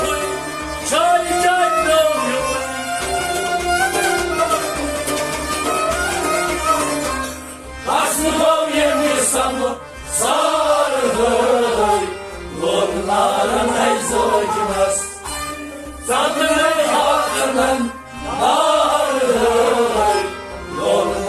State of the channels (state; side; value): identical; both; correlation 1.00